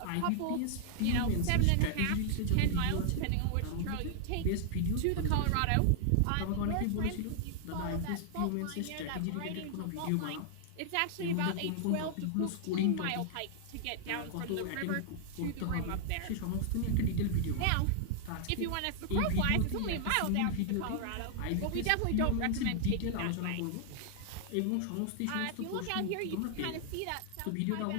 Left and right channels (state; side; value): different; both; correlation 0.00